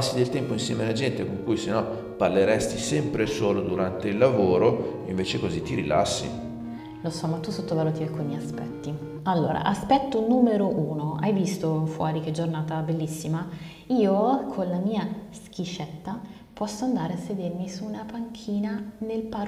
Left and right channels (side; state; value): both; identical; correlation 1.00